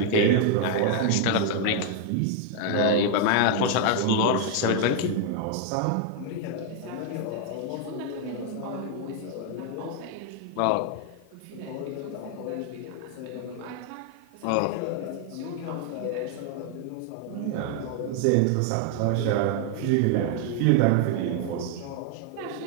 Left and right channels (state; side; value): different; both; correlation 0.00